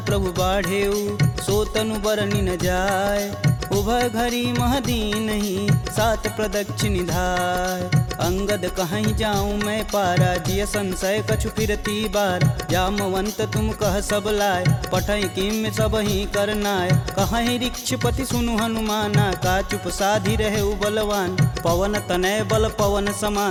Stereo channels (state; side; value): identical; both; correlation 1.00